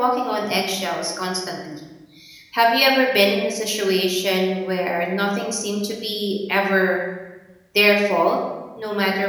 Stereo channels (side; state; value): both; identical; correlation 1.00